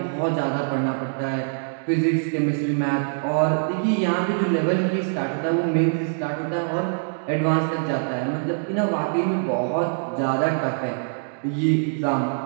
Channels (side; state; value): left; silent; digital silence